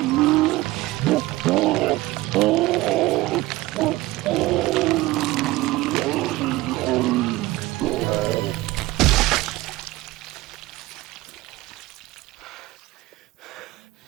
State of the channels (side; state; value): left; quieter; 18.6 dB